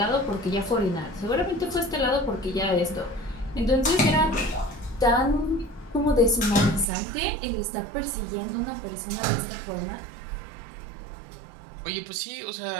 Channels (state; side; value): drops out; left; at 6.9 s